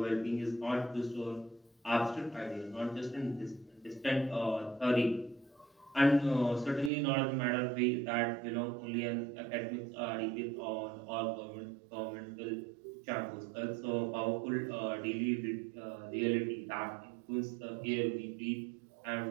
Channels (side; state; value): left; drops out; at 6.9 s